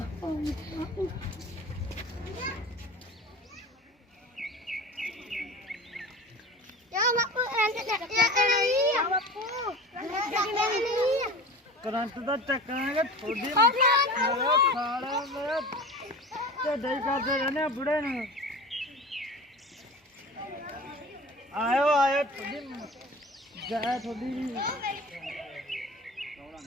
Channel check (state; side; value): normal; both; correlation 0.35